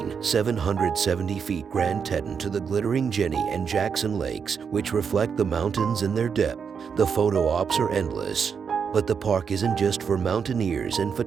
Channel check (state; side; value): quieter; left; 6.5 dB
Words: 770 feet Grand Teton to the glittering Jenny and Jackson Lakes, which reflect the mountains in their depth, the photo ops are endless. But the park isn't just for mountaineers and